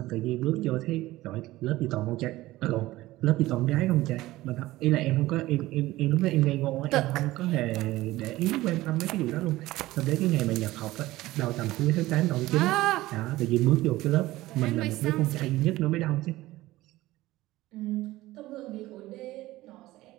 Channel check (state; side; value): quieter; left; 17.4 dB